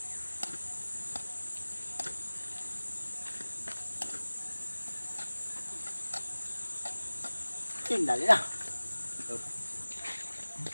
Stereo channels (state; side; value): inverted; both; correlation -1.00